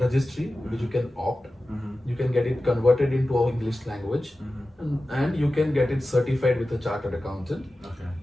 which you can opt. You can get it converted into our English language, and you can get it certified with a chartered accountant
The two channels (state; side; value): normal; both; correlation 0.94